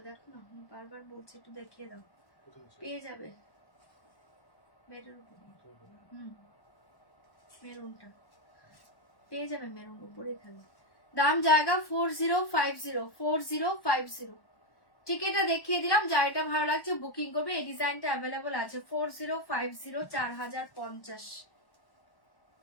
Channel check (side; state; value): right; late; 1.1 ms